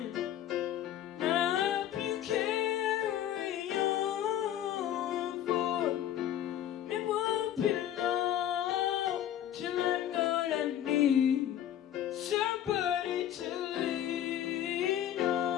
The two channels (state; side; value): quieter; right; 11.1 dB